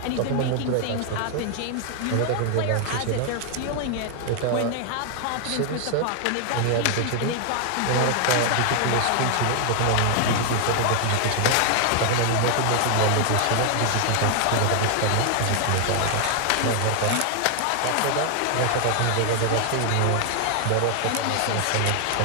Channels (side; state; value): both; different; correlation 0.00